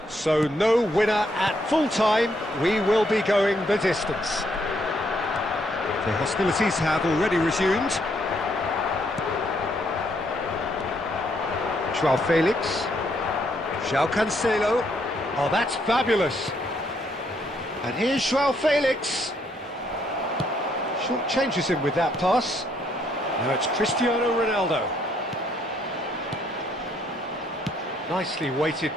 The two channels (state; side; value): normal; both; correlation 0.71